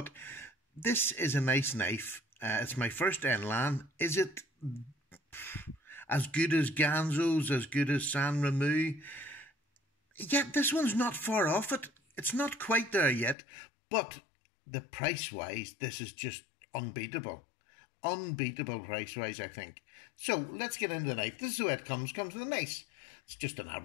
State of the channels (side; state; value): right; drops out; at 13.4 s